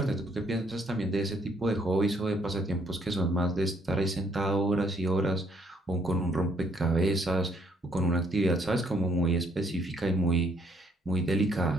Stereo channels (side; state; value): both; normal; correlation 0.67